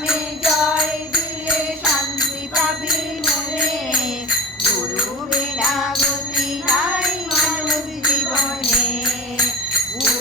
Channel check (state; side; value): normal; both; correlation 0.30